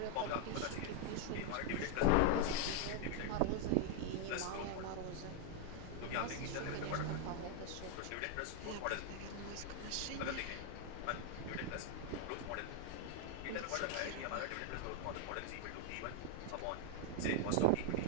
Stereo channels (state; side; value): different; both; correlation 0.00